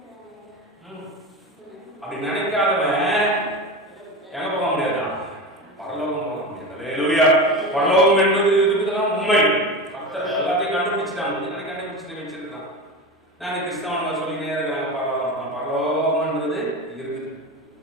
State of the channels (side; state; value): both; normal; correlation 0.26